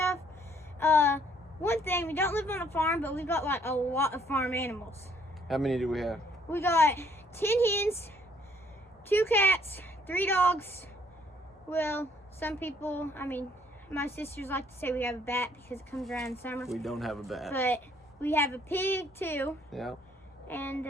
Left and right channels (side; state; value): both; normal; correlation 0.64